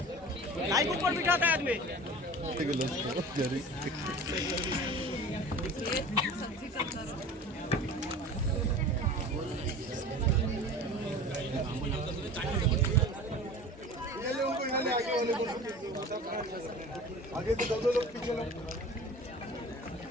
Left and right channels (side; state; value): both; normal; correlation 0.38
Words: लाईक ऊपर बिठाता है आदमी. आगे तो दो लोग पीछे लोग.